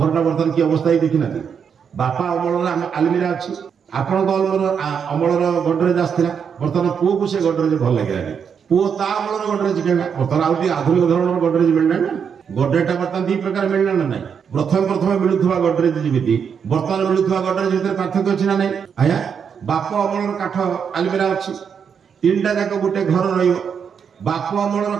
बर्तमान की अवस्था ही देखी ना बापा अमल आलमीरा अच्छी आपण अमलर गडरेज आसाला बर्तमान पुओ को से गडरेज भल लगे पुओ ता अमलर गडरेज कहला बर्तमान आउ आधुनिक धरण गडरेज मिलना ना गडरेज बर्तमान दी प्रकार मिलना ना ना प्रथम प्रथम मिलुवा गडरेज जमी बर्तमान मिलुवा गडरेज भितर पार्थक्य अच्छी ना ना आया बाप अमलर काठ आलमीरा अच्छी तीनटा जाक गोटे घर बाप अमलर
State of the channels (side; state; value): left; quieter; 7.0 dB